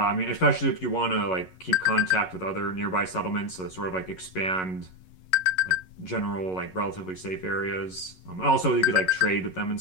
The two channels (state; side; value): late; right; 11 ms